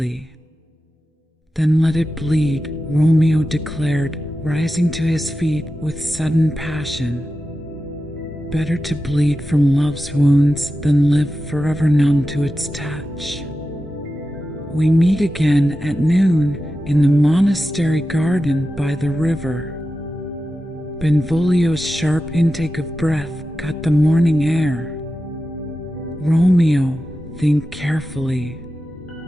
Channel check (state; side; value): normal; both; correlation 0.92